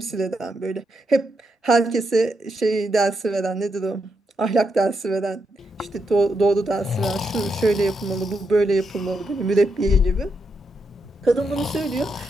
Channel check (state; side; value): normal; both; correlation 0.82